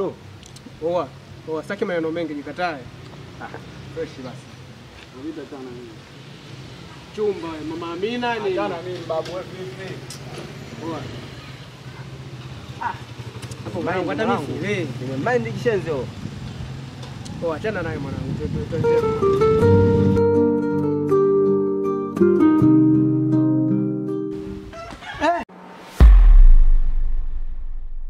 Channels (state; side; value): identical; both; correlation 1.00